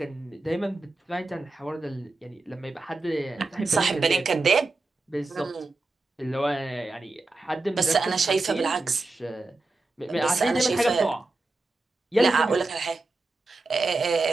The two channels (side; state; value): left; quieter; 3.3 dB